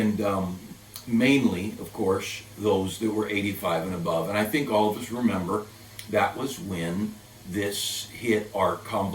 mainly, of course, those that were 85 and above. And I think all of us remember that was when this hit our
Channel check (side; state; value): both; identical; correlation 1.00